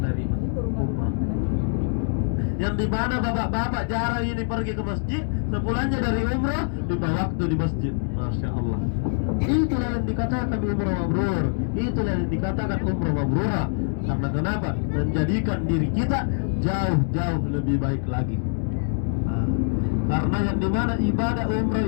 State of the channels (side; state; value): right; silent; digital silence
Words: umrah. Yang dimana bapak-bapak jarang ini pergi ke masjid, sepulangnya dari umrah lima waktu di masjid. Masya Allah. Itulah yang dikatakan umrah mabrur, itulah yang dikatakan umrah mabrurah. Karena kenapa? Menjadikan diri kita jauh-jauh lebih baik lagi. Nah, karena yang dimana ibadah umrah